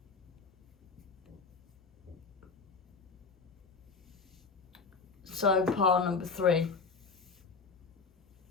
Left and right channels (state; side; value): quieter; right; 4.8 dB